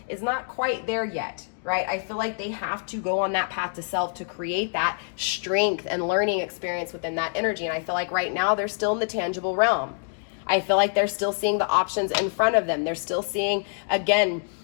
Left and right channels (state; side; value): silent; right; digital silence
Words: is not quite there yet, right? I feel like they have to go on that path to self to create that strength and learning experience within that energy. And I feel like right now they're still in the tangible realm. I feel like they're still seeing the options in front of them. They're still seeing, again,